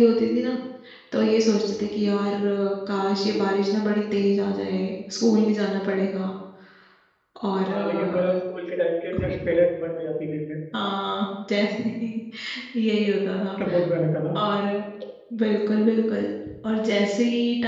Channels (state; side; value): identical; both; correlation 1.00